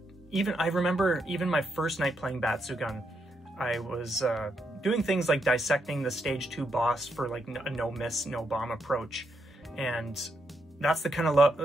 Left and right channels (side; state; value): both; normal; correlation 0.80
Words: I remember even my first night playing Batsu gun, I was doing things like dissecting the stage 2 boss for like a no miss, no bomb approach, and that's the kind